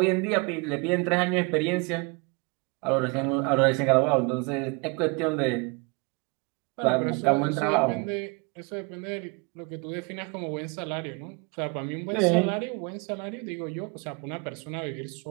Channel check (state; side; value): quieter; left; 30.5 dB